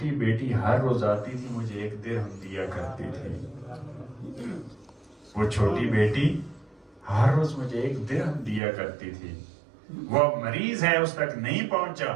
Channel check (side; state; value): left; drops out; at 8.6 s